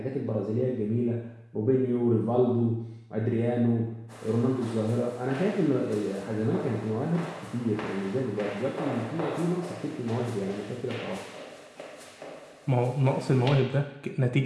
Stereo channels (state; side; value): identical; both; correlation 1.00